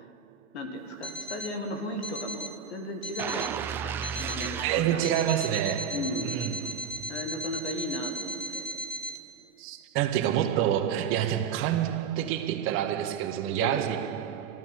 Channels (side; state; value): left; quieter; 6.9 dB